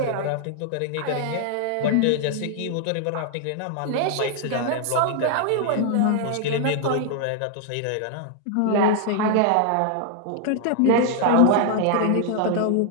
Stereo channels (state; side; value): different; both; correlation 0.00